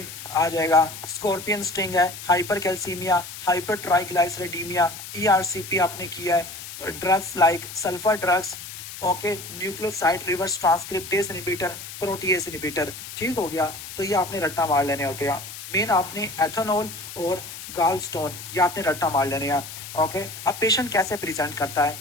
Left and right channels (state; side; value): noise; left; hiss, 11 dB below the sound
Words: आ जाएगा, स्कॉर्पियन स्टिंग है, हाइपर कैल्सीमिया, हाइपर ट्राइग्लाइसरीडीमिया, ईआरसीपी आपने किया है, drugs like sulphur drugs, okay, nucleoside reverse transcriptase inhibitor, protease inhibitor. ठीक हो गया। तो ये आपने रट्टा मार लेने होते हैं। मेन आपने एथेनॉल और गाल स्टोन ये आपने रट्टा मार लेने हैं। ओके। अब पेशेंट कैसे प्रेजेंट करता है,